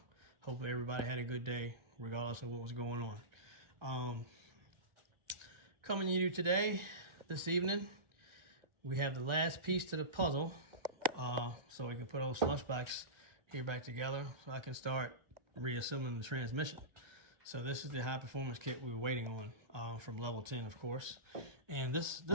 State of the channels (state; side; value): late; left; 1.3 ms